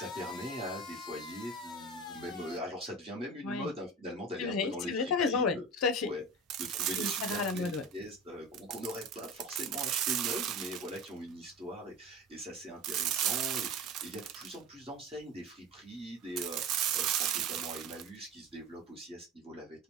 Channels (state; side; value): normal; both; correlation 0.31